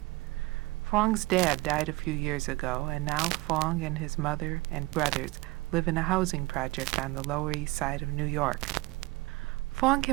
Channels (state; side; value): quieter; left; 21.6 dB